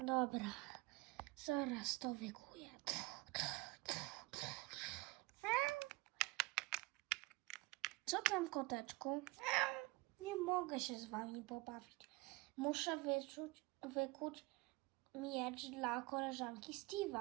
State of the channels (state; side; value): quieter; left; 23.1 dB